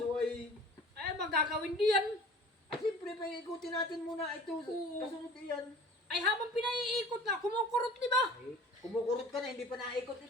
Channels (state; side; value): normal; both; correlation 0.44